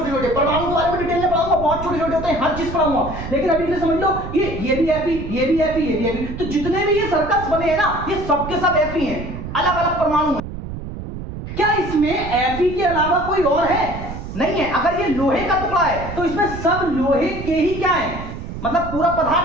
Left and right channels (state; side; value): noise; right; rumble, 9 dB below the sound